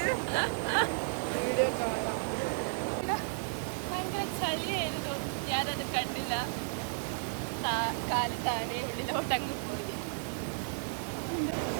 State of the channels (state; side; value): silent; left; digital silence